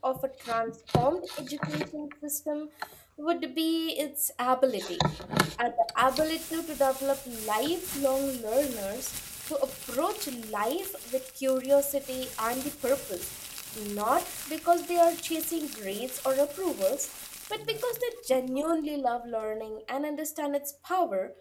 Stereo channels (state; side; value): identical; both; correlation 1.00